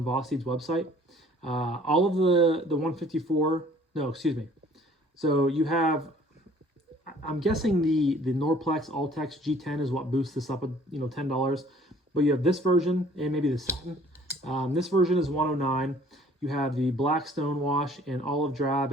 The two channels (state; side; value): normal; both; correlation 0.55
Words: Vosteed's website. All of the 154, no, excuse me. So you have, I'm guessing the Norplex All-Tex G10 is what boosts this up at, you know, $10. But you have this version and maybe the satin. This version is $109. You have the black stonewash and olive drab